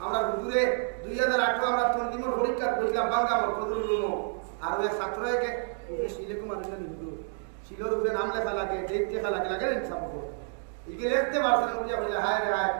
আমরা হুজুরে 2008 আমরা তন্দিমর পরীক্ষা করেছিলাম বাংলামর ফজলুল আর ওই ছাত্রকে শিলেকুম আনন্দ নিদু শিলোর উপরে নাম লেখা লাগে ডেট লেখা লাগে লাগে ইনসাফ করে ইকে লিখতে পারছেন বুঝিয়া বলে হায় রে হায়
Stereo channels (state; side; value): silent; left; 58 dB below the other